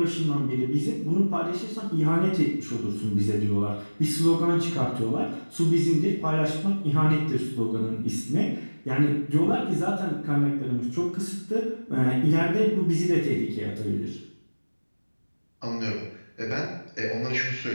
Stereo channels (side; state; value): both; inverted; correlation -1.00